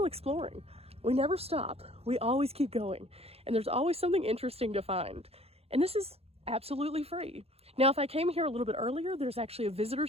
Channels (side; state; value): left; late; 0.29 ms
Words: exploring. We never stop. We always keep going, and there's always something interesting to find. And this is absolutely free. Now, if I came here a little bit earlier, there's actually a visitor